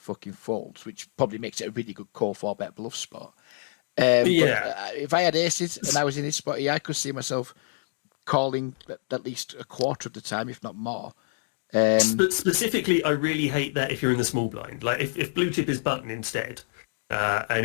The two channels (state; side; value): silent; right; digital silence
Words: fucking folds, which probably makes it a really good call 4-bet bluff spot. But if I had aces and I was in this spot here, I could see myself calling at least a quarter of the time, if not more. But specifically, I really hate that if you're in the small blind. Like if blue chip is button instead, and